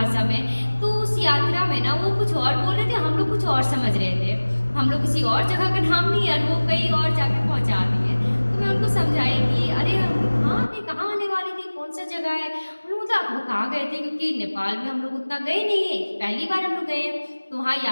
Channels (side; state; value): both; inverted; correlation -1.00